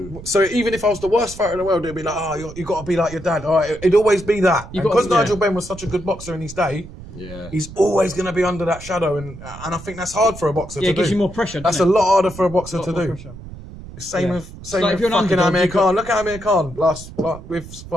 So even if I was the worst fighter in the world, it'd be like, you got to be like your dad. All right, it'd always be that. Because Nigel Benn was such a good boxer in his day, he's always going to be under that shadow, and I think that's hard for a boxer to do. Yeah, it gives you more pressure. That's a lot harder for a boxer to do. Pressure. Same with if you're an fucking underdog, Amir Khan. Look at Amir Khan with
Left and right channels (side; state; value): right; noise; rumble, 15 dB below the sound